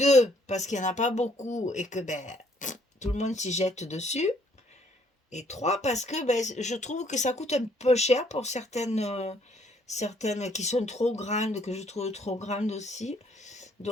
parce qu'il n'y en a pas beaucoup et que ben, tout le monde s'y jette dessus. Et trois, parce que ben, je trouve que ça coûte un peu cher pour certaines qui sont trop grandes, que je trouve trop grandes aussi.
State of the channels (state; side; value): normal; both; correlation 0.65